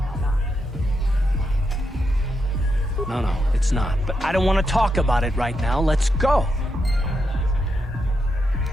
No, it's not. But I don't want to talk about it right now. Let's go.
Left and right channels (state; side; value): normal; both; correlation 0.83